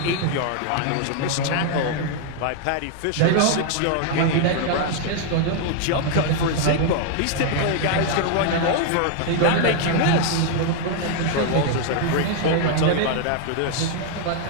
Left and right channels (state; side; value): different; both; correlation 0.00